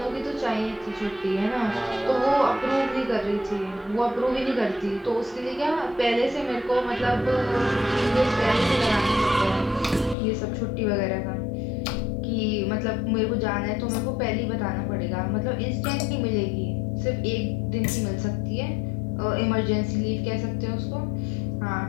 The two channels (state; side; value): drops out; right; at 10.2 s